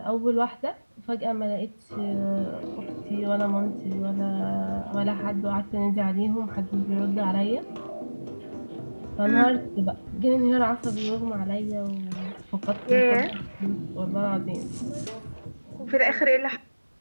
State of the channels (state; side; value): inverted; both; correlation -1.00